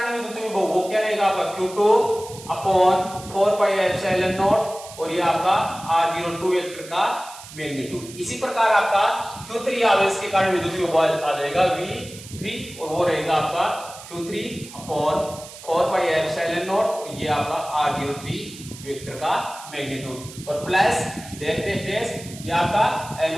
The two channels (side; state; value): right; noise; hiss, 16 dB below the sound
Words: विद्युत विभव वो क्या रहेगा आपका Q2 upon 4 pi epsilon naught और ये आपका R02 वेक्टर का मैग्नीट्यूड। इसी प्रकार आपका Q3 आवेश के कारण विद्युत विभव आ जाएगा V3 और वो रहेगा आपका Q3 upon 4 pi epsilon naught और ये आपका R03 वेक्टर का मैग्नीट्यूड, और प्लस डैश डैश डैश ये आपका